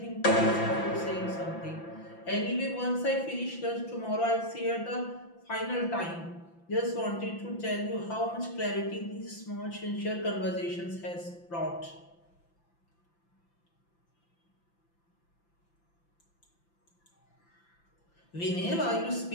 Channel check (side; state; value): right; late; 5.9 ms